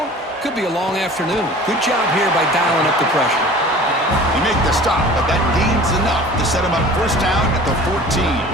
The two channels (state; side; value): normal; both; correlation 0.43